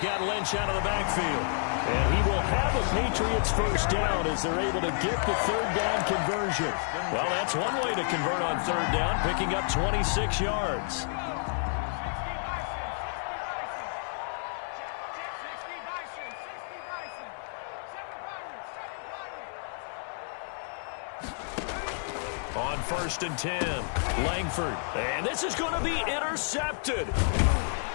Lynch out of the backfield. And he will have a Patriots first down as they're able to get the 3rd down conversion. Well, that's one way to convert on 3rd down, picking up 26 yards. On 1st and 10, Langford. And this is going to be intercepted.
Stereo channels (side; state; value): right; silent; 58 dB below the other